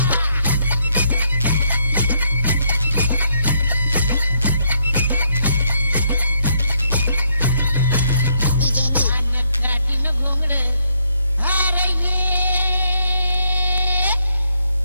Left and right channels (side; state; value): both; inverted; correlation -0.73